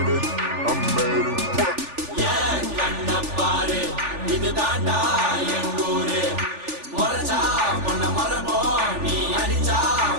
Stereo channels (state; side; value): late; left; 3.4 ms